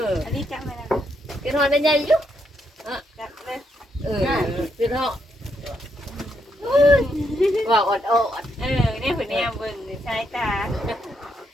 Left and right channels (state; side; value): normal; both; correlation 0.77